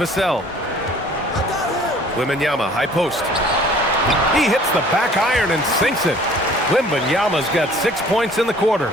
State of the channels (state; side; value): normal; both; correlation 0.52